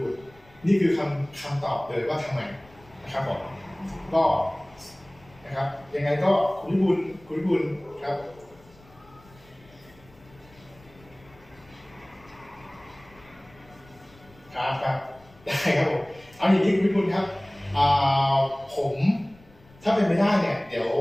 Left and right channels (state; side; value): noise; left; rumble, 26 dB below the sound